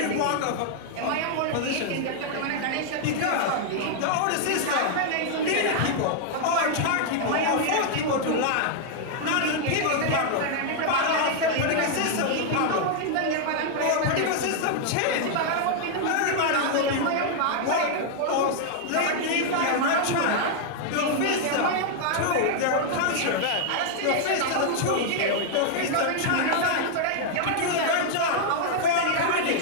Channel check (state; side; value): different; both; correlation 0.00